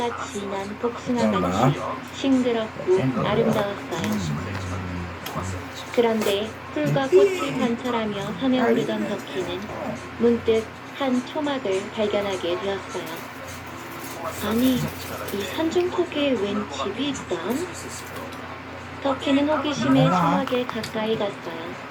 진한 복숭아같이 싱그럽고 아름다웠어요. 그런데 풀과 꽃을 관찰하며 산에 오르던 덕희는 문득 한 초막을 발견하게 되었어요. 아니, 이 산중턱에 웬 집이 있담? 덕희는 호기심에 초막에 가까이 갔어요.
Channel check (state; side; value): identical; both; correlation 1.00